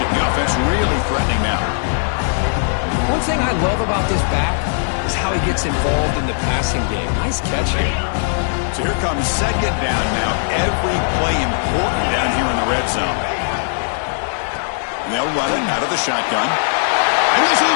The offense really threatening now. One thing I love about this back is how he gets involved in the passing game. Nice catch here. So here comes second down now. Every play important down here in the red zone. And they'll run it out of the shotgun. And he's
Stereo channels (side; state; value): right; silent; digital silence